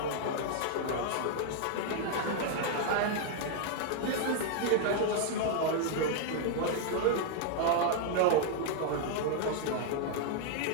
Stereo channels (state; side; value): different; both; correlation 0.00